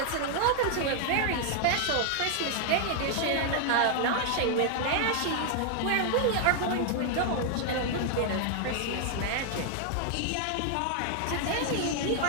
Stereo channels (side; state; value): both; different; correlation 0.00